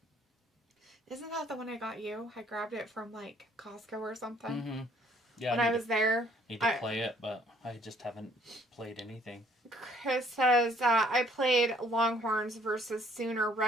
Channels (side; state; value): both; normal; correlation 0.62